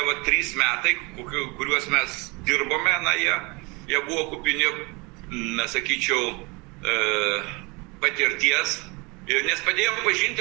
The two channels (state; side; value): quieter; left; 27.5 dB